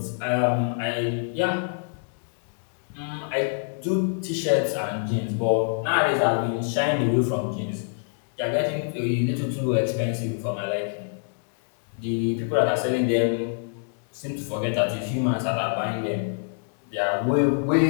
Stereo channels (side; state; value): right; silent; digital silence